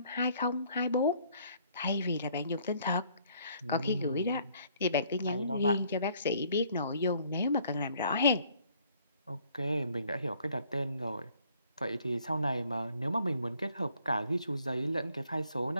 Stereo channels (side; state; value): both; inverted; correlation -0.62